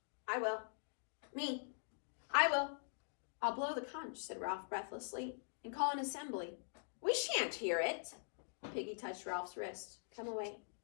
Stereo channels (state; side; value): silent; right; digital silence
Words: I will. Me. I will. I'll blow the conch, said Ralph breathlessly, and call an assembly. We shan't hear it. Piggy touched Ralph's wrist. Come away.